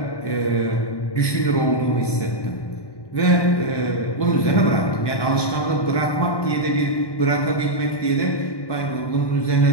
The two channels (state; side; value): late; right; 1.1 ms